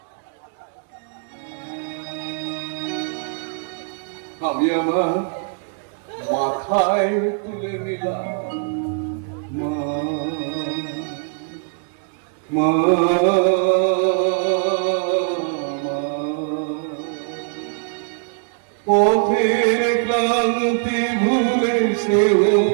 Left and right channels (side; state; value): left; silent; 64 dB below the other